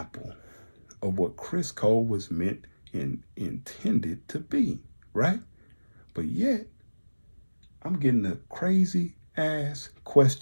of what Criss Cole was meant and intended to be, right? But yet, I'm getting a crazy ass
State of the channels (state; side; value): inverted; both; correlation -1.00